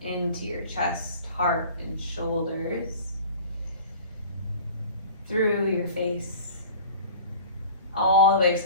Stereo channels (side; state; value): both; inverted; correlation -0.42